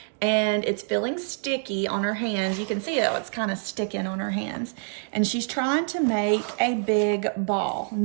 and it's feeling sticky on her hands. You can see it's kind of sticking on her hands. And she's trying to make a big ball.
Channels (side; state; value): left; silent; 61 dB below the other